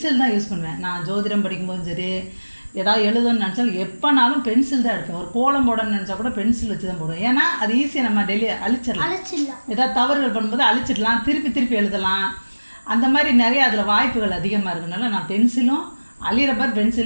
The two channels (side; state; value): both; inverted; correlation -1.00